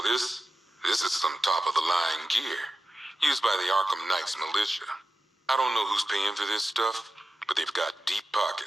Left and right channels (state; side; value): normal; both; correlation 0.93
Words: this is some top-of-the-line gear, used by the Arkham Knight's militia. I don't know who's paying for this stuff, but they've got deep